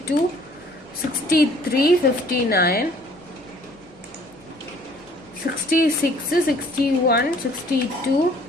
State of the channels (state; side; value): normal; both; correlation 0.57